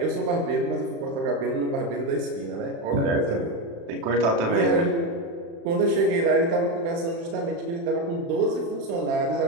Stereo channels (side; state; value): left; late; 36 ms